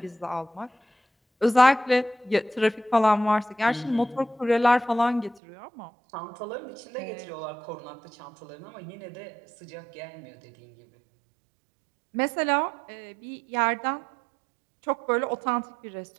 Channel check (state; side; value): drops out; left; at 5.4 s